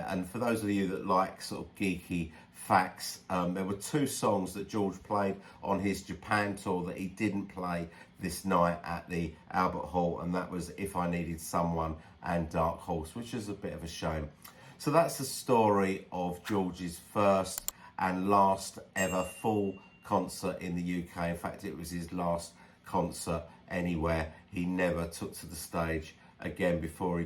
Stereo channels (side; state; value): both; identical; correlation 1.00